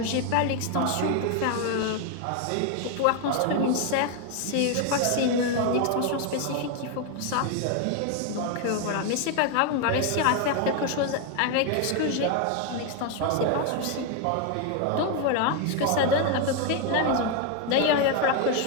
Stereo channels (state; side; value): different; both; correlation 0.01